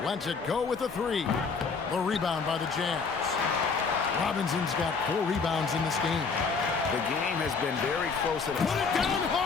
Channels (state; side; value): quieter; right; 5.0 dB